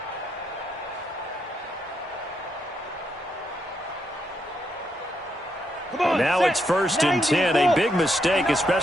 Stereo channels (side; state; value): both; normal; correlation 0.79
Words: Now it's 1st and 10, a big mistake,